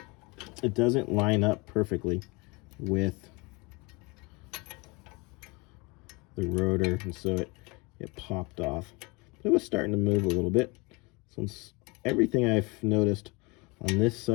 doesn't line up perfectly with the rotor, and so it popped off. But it was starting to move a little bit. Since everything I've noticed on this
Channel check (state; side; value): quieter; right; 26.7 dB